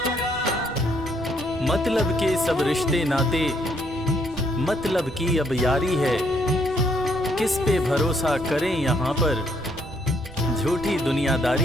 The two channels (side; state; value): right; noise; rumble, 18 dB below the sound